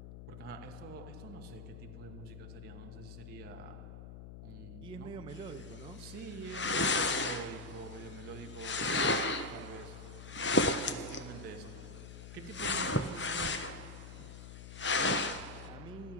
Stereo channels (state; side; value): noise; left; hum, 11 dB below the sound